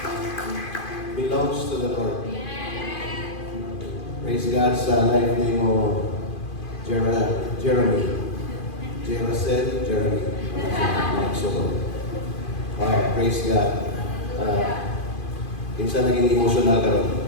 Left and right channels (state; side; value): late; right; 2.5 ms